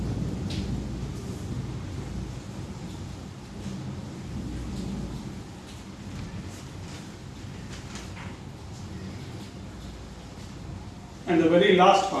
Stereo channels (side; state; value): both; identical; correlation 1.00